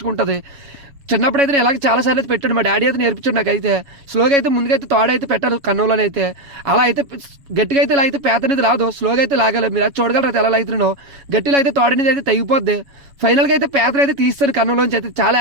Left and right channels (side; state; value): left; late; 7.2 ms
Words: ఉంటుంది. చిన్నప్పుడు అయితే ఇలాగ చాలా సార్లు అయితే పెట్టాడు. మా డాడీ అయితే నేర్పించాడు నాకైతే. స్లోగా అయితే ముందుకైతే తోడైతే పెట్టారు కన్నులోనైతే. అలా అయితే గట్టిగా అయితే ఇలా అయితే పేత అనేది రాదు, స్లోగా అయితే లాగాలి. మీరు అది చూడగలరు అయితే ఎలా అవుతున్నానో. గట్టిలో అయితే తోడనేది అయితే తెగిపోద్ది. ఫైనల్గా అయితే పేతను అయితే తీస్తాను కన్నులోంచి. అయితే చాలా